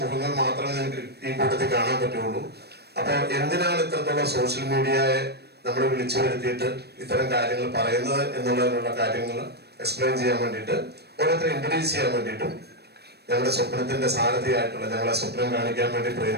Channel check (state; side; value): late; left; 0.47 ms